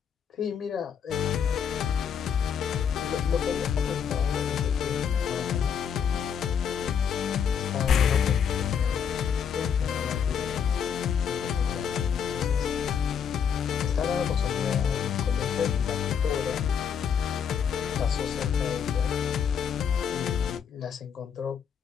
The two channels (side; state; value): right; quieter; 7.6 dB